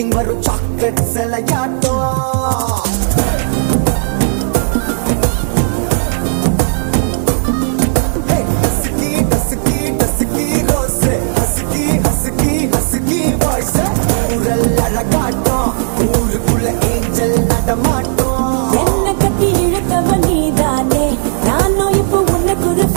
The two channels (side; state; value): left; silent; digital silence